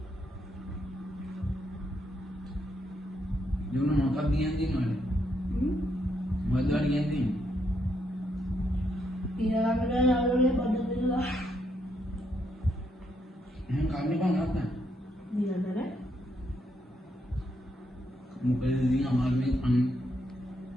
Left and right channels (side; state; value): both; normal; correlation 0.77